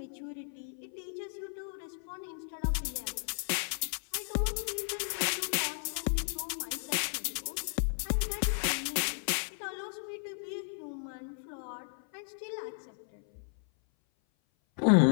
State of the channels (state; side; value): silent; right; 55 dB below the other